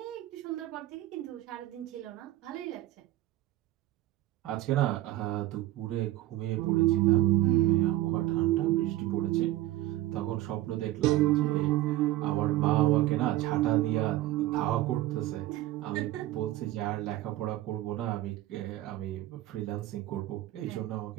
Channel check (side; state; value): left; quieter; 15.5 dB